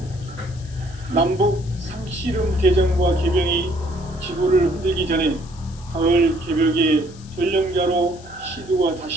남북 상씨름 대전과 계병이 지구를 흔들기 전에 가을 개벽의 전령자로 시두가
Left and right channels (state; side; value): noise; left; hiss, 23 dB below the sound